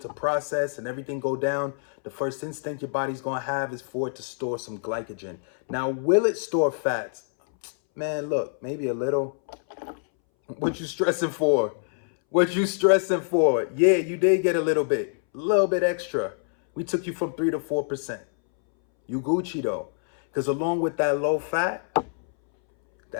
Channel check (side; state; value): right; silent; 61 dB below the other